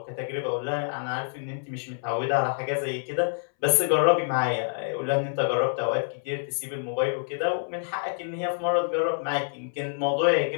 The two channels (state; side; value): silent; right; 60 dB below the other